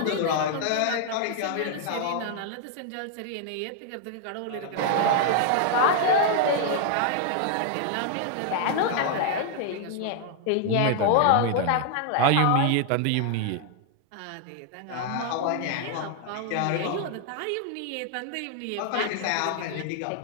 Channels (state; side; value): different; both; correlation 0.00